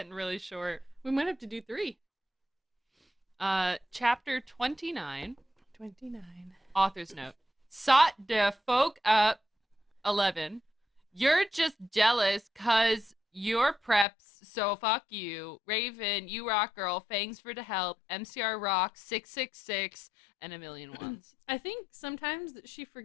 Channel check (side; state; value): right; drops out; at 14.1 s